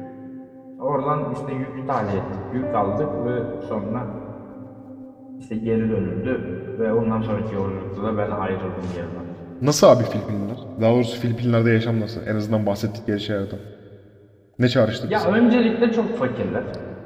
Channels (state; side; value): identical; both; correlation 1.00